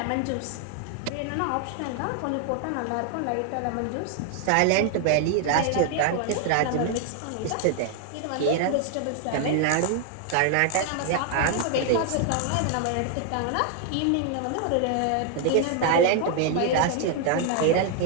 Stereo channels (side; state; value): both; different; correlation 0.00